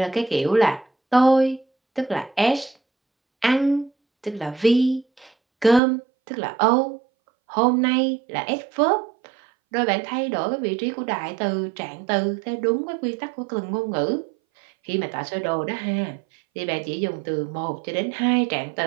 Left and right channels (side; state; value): left; drops out; at 5.8 s